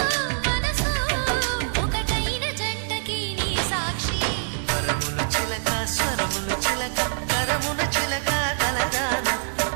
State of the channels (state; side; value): silent; left; digital silence